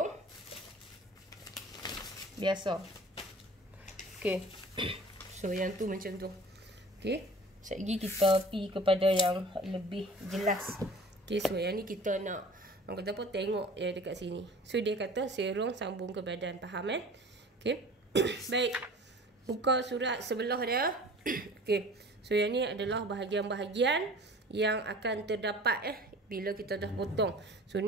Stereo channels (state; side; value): normal; both; correlation 0.44